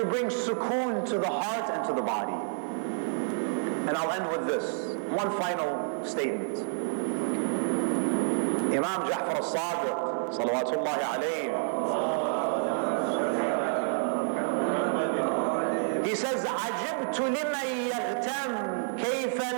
bring sukoon to the heart and to the body. And I'll end with this. One final statement. Imam Ja'far al-Sadiq, salawatullahi alayhi, he says, عجبت لمن يغتم كيف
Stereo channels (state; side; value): silent; left; 59 dB below the other